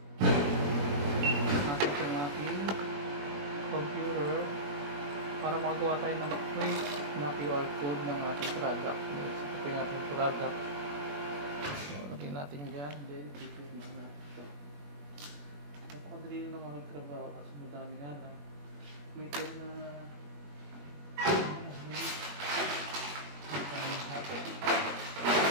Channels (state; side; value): late; left; 21 ms